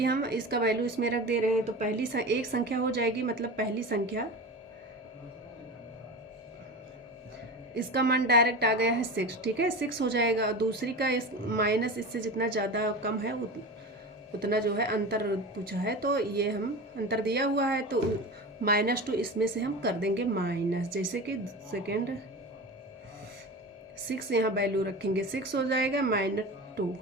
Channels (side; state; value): both; normal; correlation 0.28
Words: हम इसका वैल्यू इसमें रख दे रहे हैं, तो पहली एक संख्या हो जाएगी, मतलब पहली संख्या इसका मान डायरेक्ट आ गया है 6। ठीक है, 6 हो जाएगा, दूसरी का इस माइनस इससे जितना ज़्यादा कम है उतना जो है अंतर पूछा है, तो ये हम अंतर दिया हुआ है, तो -2 इसमें से हम कर देंगे माइनस, जैसे कि सेकेंड 6 यहाँ वैल्यू रखेंगे, 6 हो जाएगा -2।